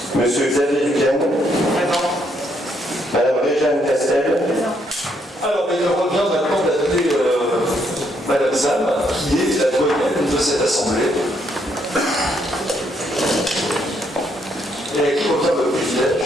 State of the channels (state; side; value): normal; both; correlation 0.73